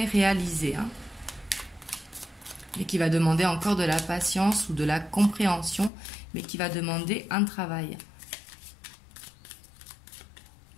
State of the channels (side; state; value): right; drops out; at 5.9 s